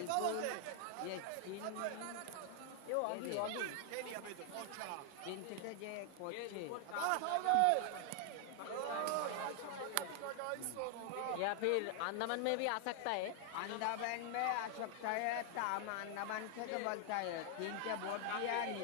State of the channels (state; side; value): different; both; correlation 0.00